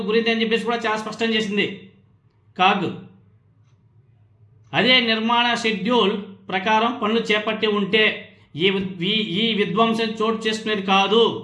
గురింది అని చెప్పేసి కూడా చాలా స్పష్టం చేసింది. కాగ్. అదే నిర్మాణ షెడ్యూల్ ప్రకారం పనులు చేపట్టి ఉంటే ఈ విధ్వంసం చోటు చేసుకునేది కాదు.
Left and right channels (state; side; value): identical; both; correlation 1.00